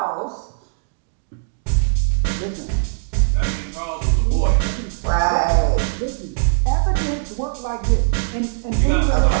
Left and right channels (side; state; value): left; silent; digital silence